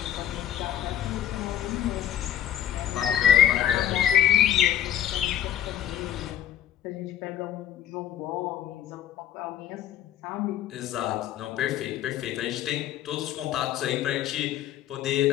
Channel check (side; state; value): right; quieter; 11.1 dB